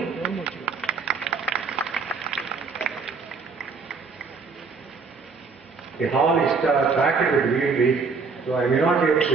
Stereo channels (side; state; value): left; quieter; 4.8 dB